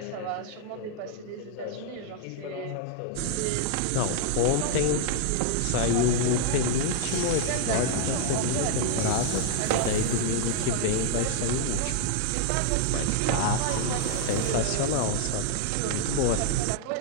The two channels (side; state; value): both; different; correlation 0.00